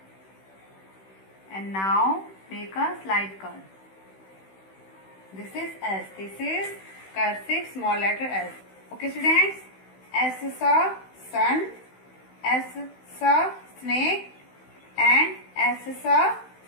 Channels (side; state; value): right; late; 16 ms